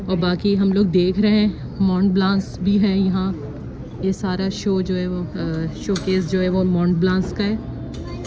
और बाकी हम लोग देख रहे हैं मॉन्ट ब्लांस भी है यहाँ। ये सारा शो जो है वो शोकेस जो है वो मॉन्ट ब्लांस का है।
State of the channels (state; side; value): identical; both; correlation 1.00